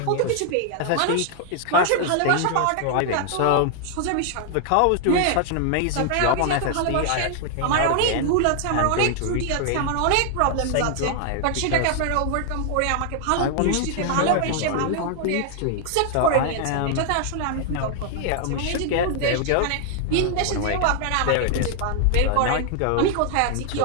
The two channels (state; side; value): different; both; correlation 0.00